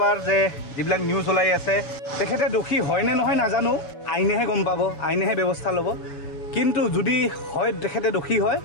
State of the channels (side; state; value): right; late; 6.9 ms